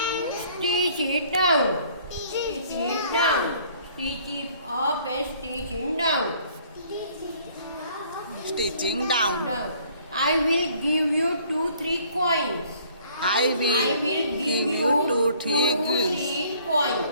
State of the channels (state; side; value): inverted; both; correlation -0.58